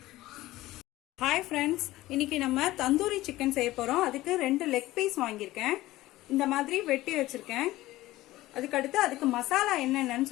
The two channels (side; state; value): right; quieter; 17.0 dB